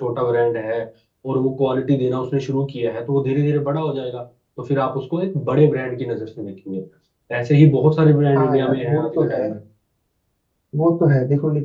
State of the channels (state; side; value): identical; both; correlation 1.00